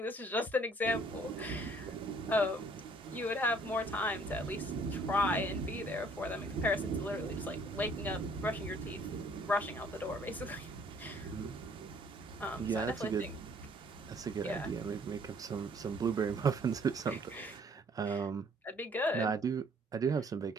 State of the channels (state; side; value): normal; both; correlation 0.60